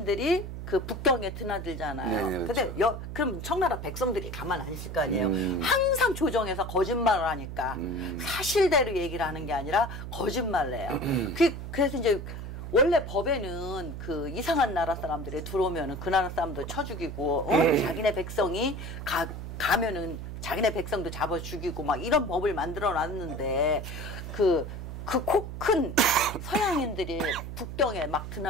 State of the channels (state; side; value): noise; right; hum, 8 dB below the sound